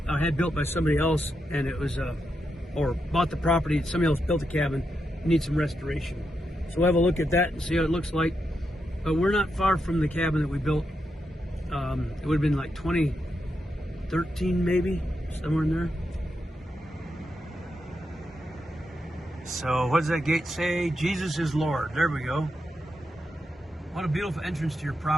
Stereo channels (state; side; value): normal; both; correlation 0.85